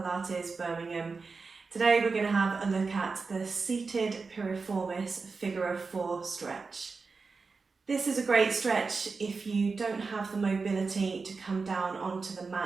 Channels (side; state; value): left; quieter; 4.5 dB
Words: Birmingham. Today we're going to have a look at the Seated Piriformis Figure of 4 stretch. This is a great stretch if you don't have the mobility to come down onto the